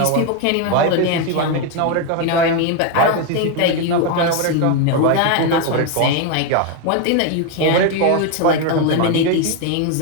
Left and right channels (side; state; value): both; different; correlation 0.02